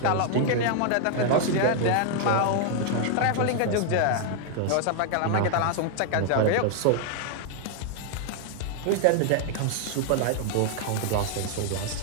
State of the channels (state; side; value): different; both; correlation 0.00